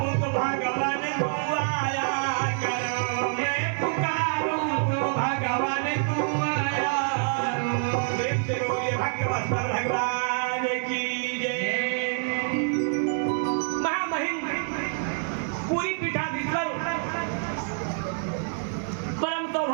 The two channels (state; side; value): silent; left; 60 dB below the other